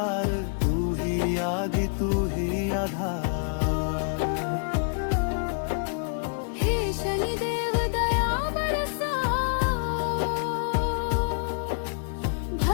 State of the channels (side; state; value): right; silent; digital silence